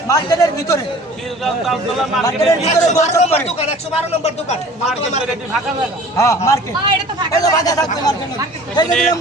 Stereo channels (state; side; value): normal; both; correlation 0.46